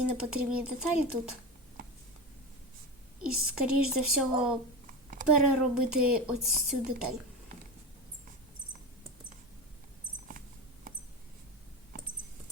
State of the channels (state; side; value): normal; both; correlation 0.22